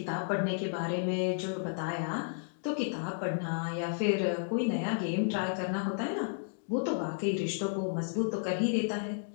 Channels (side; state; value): right; silent; digital silence